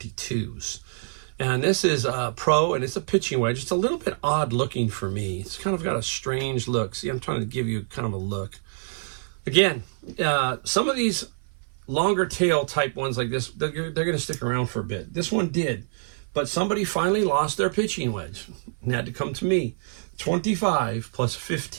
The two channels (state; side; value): silent; left; 57 dB below the other